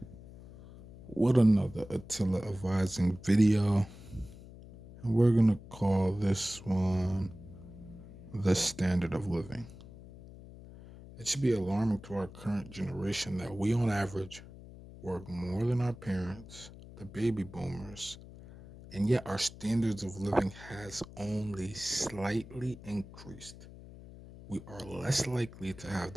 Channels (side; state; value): left; noise; hum, 17 dB below the sound